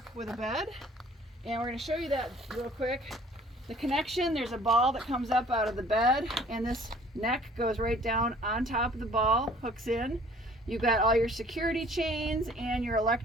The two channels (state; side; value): normal; both; correlation 0.54